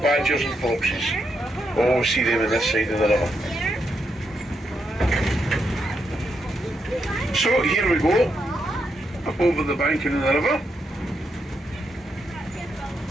and foxes. Always see them on this side of the river. So here we go, up over the banking of the river.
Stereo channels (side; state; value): both; normal; correlation 0.81